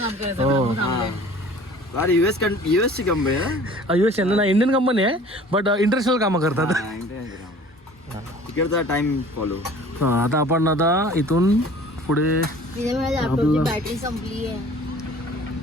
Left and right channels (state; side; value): normal; both; correlation 0.48